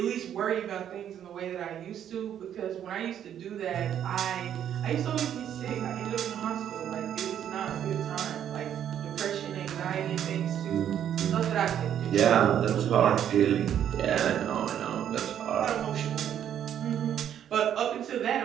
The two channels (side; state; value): left; quieter; 9.8 dB